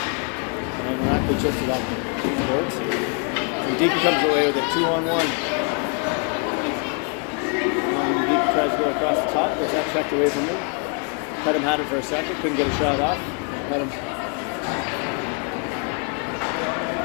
Rackley chips it up the boards. And Deacon comes away with it 2-on-1. And Deacon tries to go across the top, gets that checked away from him. Pedham had it for a second, couldn't get a shot off. Pedham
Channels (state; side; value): quieter; right; 38.9 dB